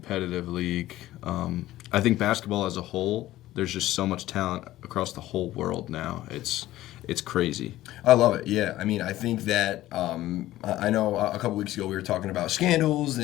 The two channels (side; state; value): right; quieter; 15.3 dB